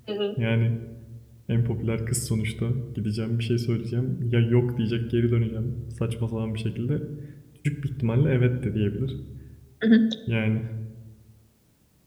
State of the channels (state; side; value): identical; both; correlation 1.00